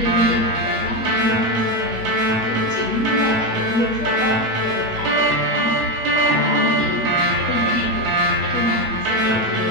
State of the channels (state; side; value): late; left; 9.1 ms